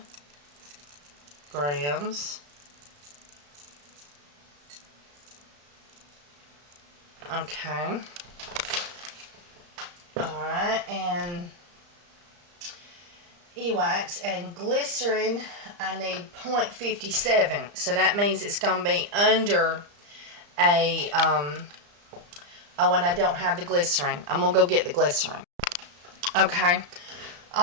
grams. Okay. Alright, and E-wax and glycerin, I need 0.57. So that means it's going to be under a, oh, and I don't have the glycerin. I'm going to go get the glycerin. Okay.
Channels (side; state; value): left; late; 35 ms